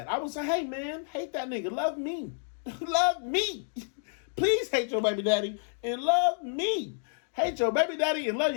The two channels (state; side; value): silent; right; digital silence